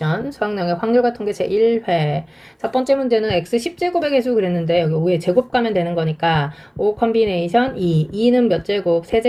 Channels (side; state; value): both; identical; correlation 1.00